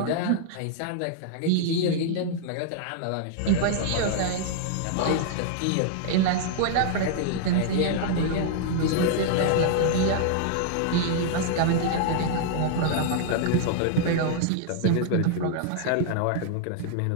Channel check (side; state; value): both; different; correlation -0.01